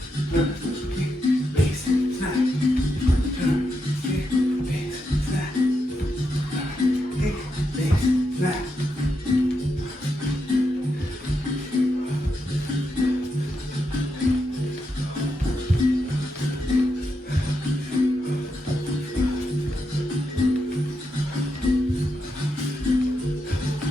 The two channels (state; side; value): normal; both; correlation 0.84